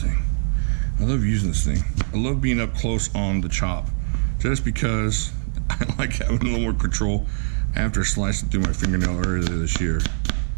thing. I love using this thing. I love being up close on the chop, just because I like having a little more control after slicing through my fingernail earlier this year.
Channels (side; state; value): left; silent; digital silence